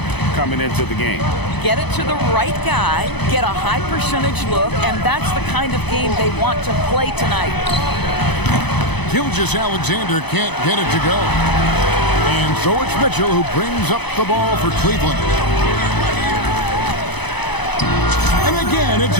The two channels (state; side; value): late; right; 0.99 ms